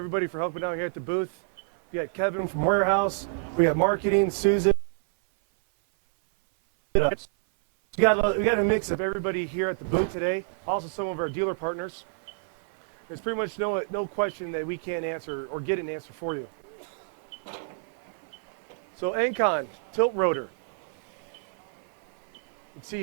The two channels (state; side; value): silent; left; 56 dB below the other